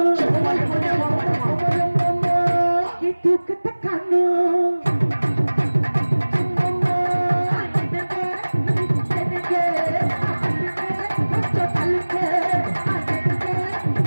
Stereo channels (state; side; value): inverted; both; correlation -1.00